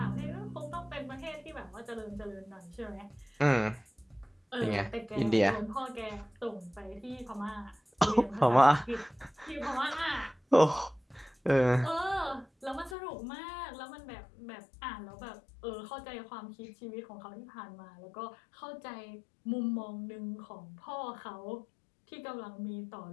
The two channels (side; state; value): right; drops out; at 13.0 s